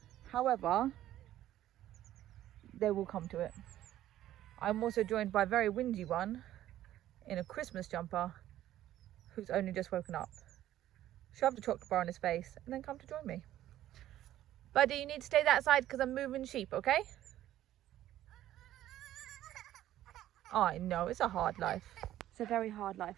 However, they will come to it. I'm also joined by a very whingy one in a Christmas jumper who's only just woken up. Shove the chocolate bar on his face and then come to join me. Buddy, you need to stay that side because I'm moving sheep, okay? I know, it's a hard life. It's a very hard life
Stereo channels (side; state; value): left; quieter; 13.1 dB